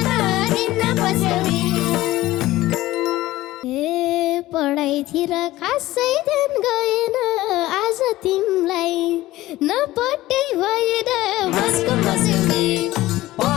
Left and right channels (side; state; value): right; quieter; 16.8 dB